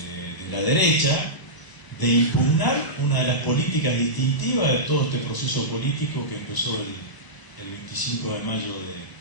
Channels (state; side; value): late; right; 1.0 ms